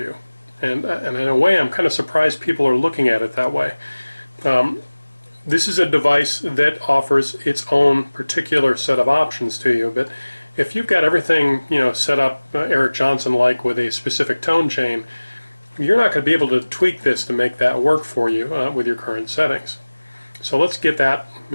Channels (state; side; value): inverted; both; correlation -1.00